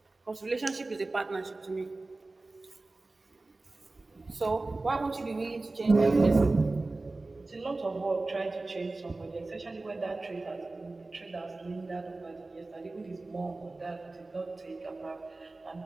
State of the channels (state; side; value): quieter; left; 3.2 dB